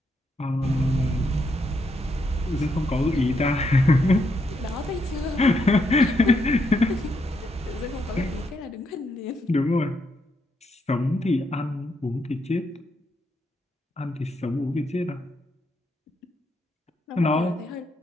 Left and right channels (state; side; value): normal; both; correlation 0.78